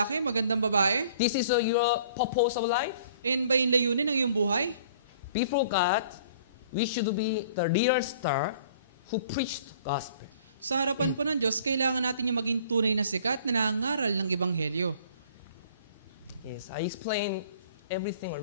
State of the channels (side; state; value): both; inverted; correlation -0.53